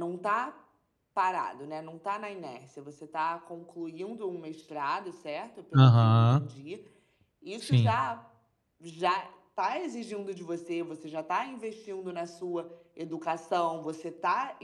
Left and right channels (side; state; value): both; identical; correlation 1.00